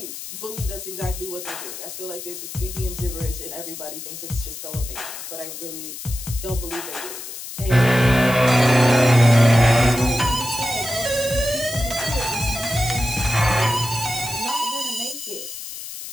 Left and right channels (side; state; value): left; noise; hiss, 10 dB below the sound